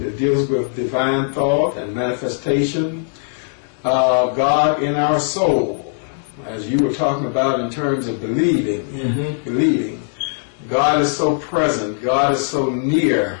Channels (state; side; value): silent; right; digital silence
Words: deals with divine thought and manifestation, God in our soul, as you were talking about in terms of believing. God is so present, God is so near